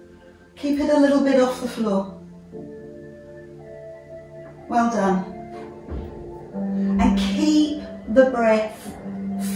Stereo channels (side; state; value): both; identical; correlation 1.00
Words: Keep it a little bit off the floor. Well done. And keep the breath